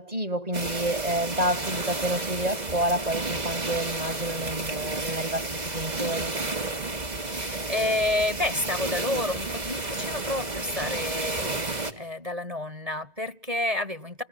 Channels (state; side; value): late; left; 2.0 ms